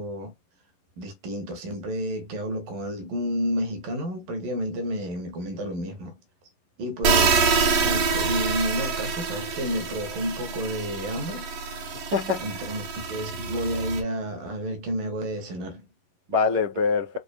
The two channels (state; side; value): late; left; 11 ms